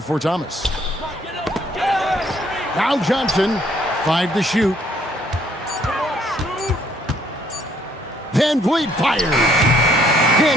Thomas. Now Johnson, 5 to shoot. VanVleet fires.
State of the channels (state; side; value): normal; both; correlation 0.66